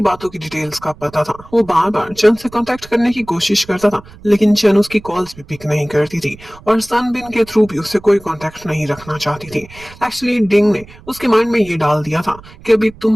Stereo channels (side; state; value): right; noise; rumble, 21 dB below the sound